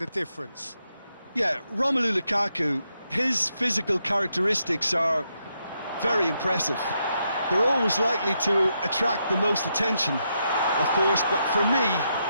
difference? Yeah, Romelu Lukaku, his physical characteristics are very impressive. They're always likely to attract the most attention, of course, but for me,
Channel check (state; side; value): inverted; both; correlation -0.81